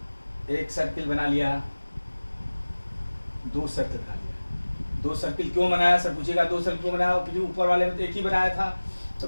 एक सर्किल बना लिया, 2 सर्किल बना लिया। 2 सर्किल क्यों बनाया, सर पूछेगा 2 सर्किल क्यों बनाया, ऊपर वाले में तो एक ही बनाया था। तो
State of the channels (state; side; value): inverted; both; correlation -1.00